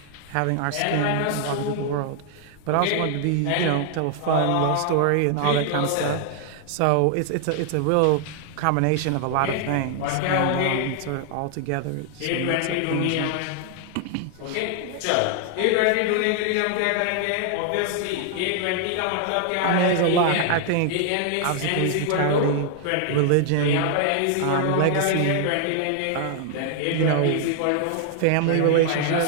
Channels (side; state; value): both; different; correlation 0.00